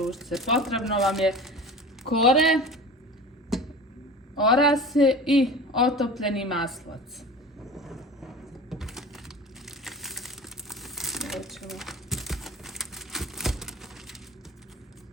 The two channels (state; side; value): normal; both; correlation 0.36